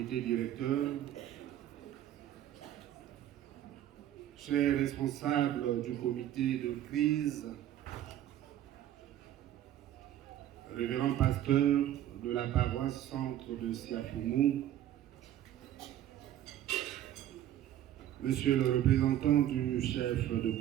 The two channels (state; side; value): quieter; left; 12.0 dB